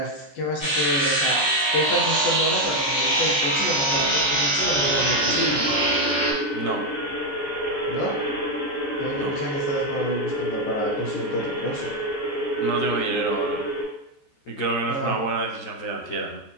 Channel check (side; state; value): right; late; 14 ms